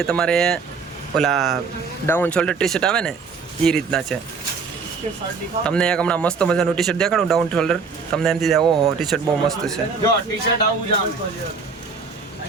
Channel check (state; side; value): quieter; left; 5.0 dB